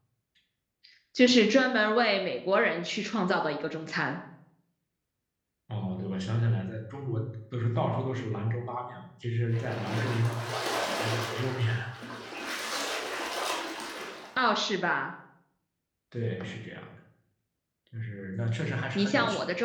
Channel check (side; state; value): both; identical; correlation 1.00